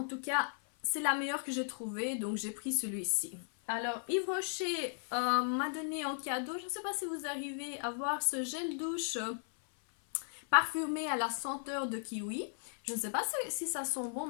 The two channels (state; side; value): silent; right; 54 dB below the other